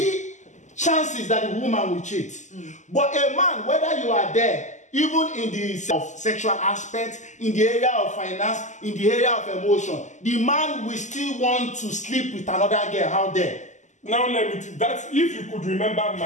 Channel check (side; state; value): right; late; 0.34 ms